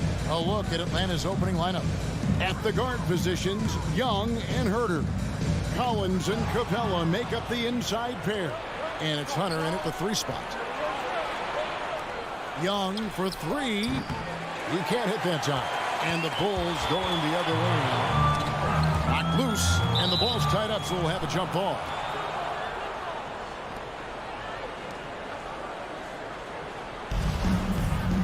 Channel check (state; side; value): identical; both; correlation 1.00